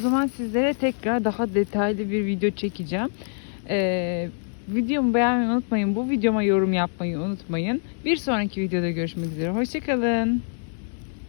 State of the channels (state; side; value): silent; right; digital silence